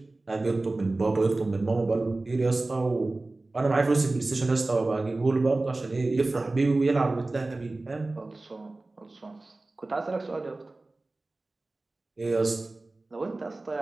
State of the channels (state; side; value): quieter; left; 3.1 dB